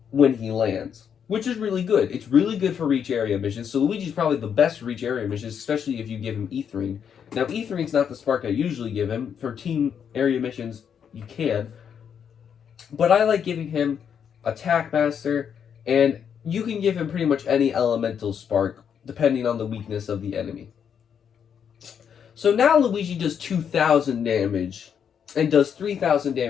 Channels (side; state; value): right; quieter; 7.8 dB